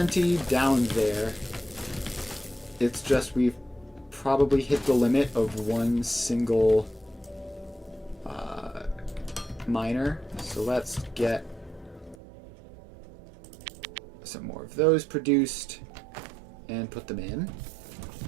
down there. It's just we've probably hit the limit of one single miner. So let's get some more of those produced. and put them in.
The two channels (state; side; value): drops out; left; at 12.2 s